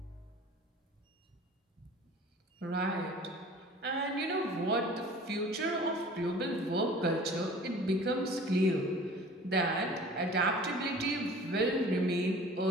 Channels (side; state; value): both; normal; correlation 0.45